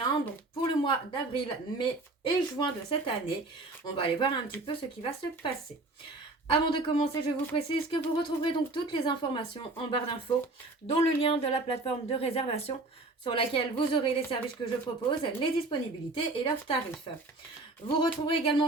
Donc pour le mois d'avril, mai et juin de cette année, on va aller voir un petit peu ce qui va se passer. Avant de commencer, je vous précise que vous retrouverez donc toutes les informations en barre d'infos, dont le lien de la plateforme de réservation sur laquelle vous aurez les services que je propose, les disponibilités et leurs tarifs. Vous retrouverez également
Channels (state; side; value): quieter; left; 3.0 dB